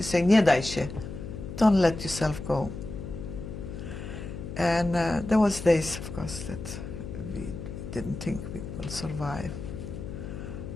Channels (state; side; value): noise; left; hum, 8 dB below the sound